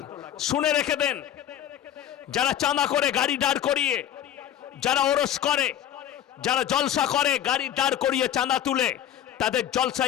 শুনে রেখে দেন, যারা চাঁদা করে গাড়ি দাঁড় করিয়ে, যারা ওরস করে, যারা জলসা করে গাড়ি দাঁড় করিয়ে চাঁদা তুলে, তাদের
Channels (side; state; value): right; quieter; 10.8 dB